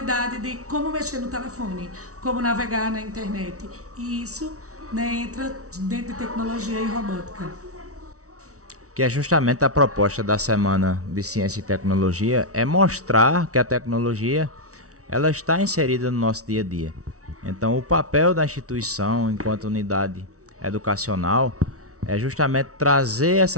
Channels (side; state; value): left; late; 0.65 ms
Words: de como mexer no telefone, como navegar na internet. E isso, né, entra dentro de tecnologia e robótica. Que é justamente a proposta da Semana de Ciência e Tecnologia, é mostrar que a tecnologia ela está inserida no nosso dia a dia. Então o papel da instituição enquanto unidade educacional é justamente trazer